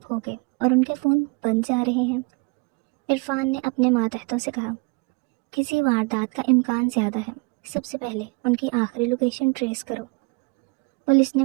ہو گئے اور ان کے فون بند جا رہے ہیں۔ عرفان نے اپنے ماتحتوں سے کہا، کسی واردات کا امکان زیادہ ہے، سب سے پہلے ان کی آخری لوکیشن ٹریس کرو۔ پولیس نے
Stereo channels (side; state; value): left; quieter; 29.8 dB